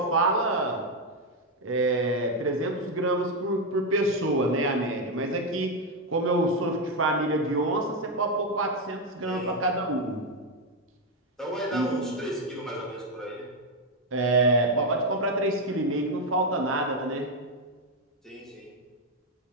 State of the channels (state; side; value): normal; both; correlation 0.05